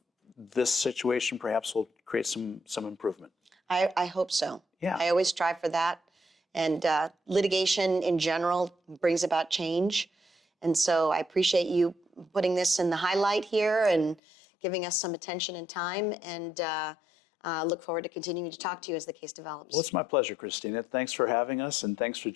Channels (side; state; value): right; drops out; at 14.2 s